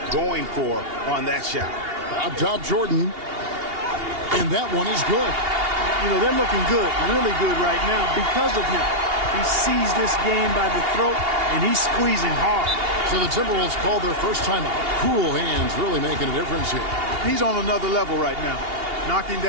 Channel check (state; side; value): late; left; 2.8 ms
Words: going for on that shot. Up top, Jordan. And that one is good. You know, they're looking good, really good right now because of him. He sees this game by the throat, and he's squeezing hard. So the Timberwolves called their first timeout. Cool hands really making a difference here. He's on another level right now. Knocking